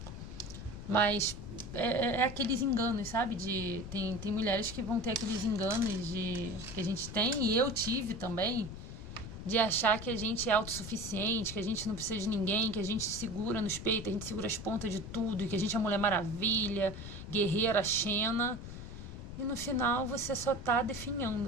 Mas é aqueles enganos, sabe? Tem mulheres que vão ter aqueles enganos que a gente tem, e eu tive também, de achar que a gente é autossuficiente, que a gente não precisa de ninguém, que a gente segura nos peitos, a gente segura as pontas de tudo, e que a gente é a Mulher Maravilha, guerreira, Xena. E no final você só tá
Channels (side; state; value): left; noise; rumble, 10 dB below the sound